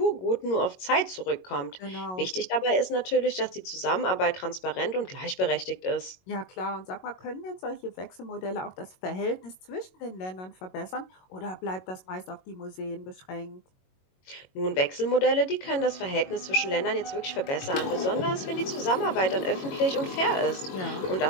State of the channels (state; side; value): late; right; 22 ms